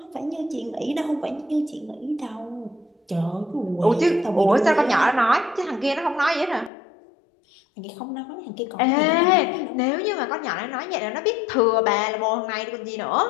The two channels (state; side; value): drops out; right; at 6.7 s